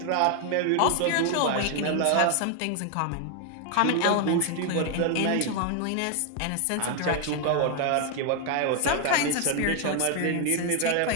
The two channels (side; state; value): both; different; correlation 0.00